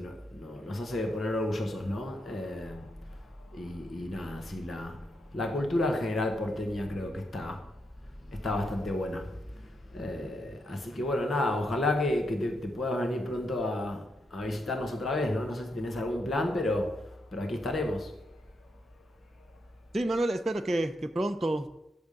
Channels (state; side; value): normal; both; correlation 0.81